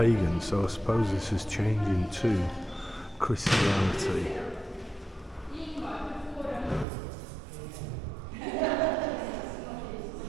so I suppose this is changing to Christianity.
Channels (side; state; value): left; drops out; at 6.9 s